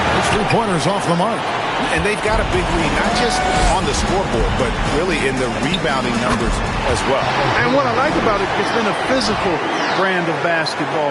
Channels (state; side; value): identical; both; correlation 1.00